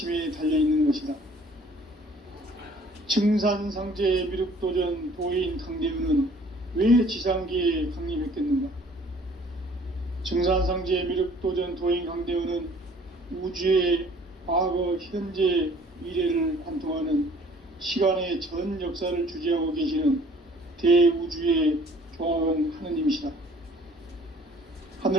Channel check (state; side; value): normal; both; correlation 0.55